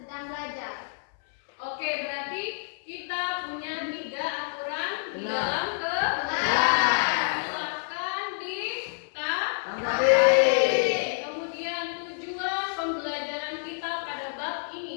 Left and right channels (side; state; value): right; silent; 59 dB below the other